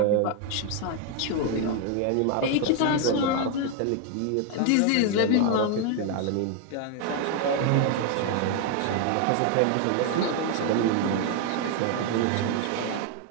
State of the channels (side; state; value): both; different; correlation 0.01